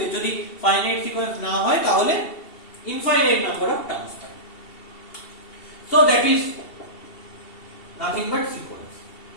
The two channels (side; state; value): right; late; 2.7 ms